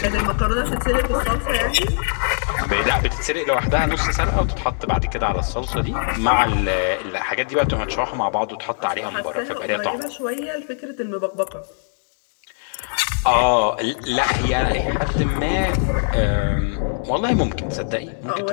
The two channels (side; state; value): right; silent; digital silence